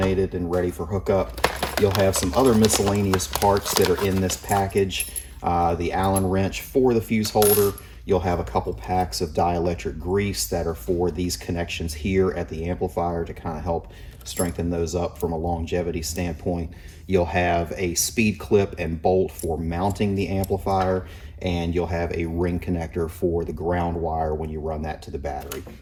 and ready for hookup. You'll have some other miscellaneous parts that are in this package. The Allen wrench for the fuse holder. You'll have a couple packs of dielectric grease that are for these connections here at the amplifier to kind of help strengthen those up from a longevity standpoint. You'll have a speed clip and bolt for mounting the amplifier, and you'll have a ring connector for the ground wire when you run that to the battery.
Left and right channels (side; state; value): both; identical; correlation 1.00